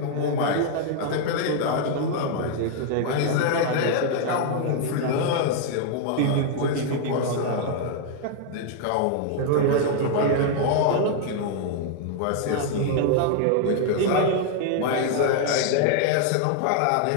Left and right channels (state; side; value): different; both; correlation 0.00